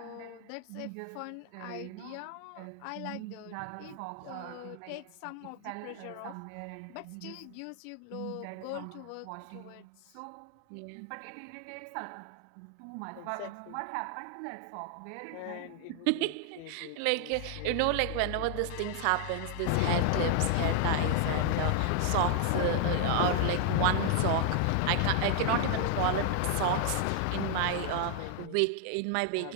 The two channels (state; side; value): different; both; correlation 0.00